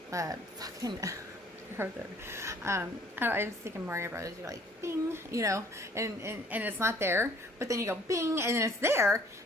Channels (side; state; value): both; normal; correlation 0.57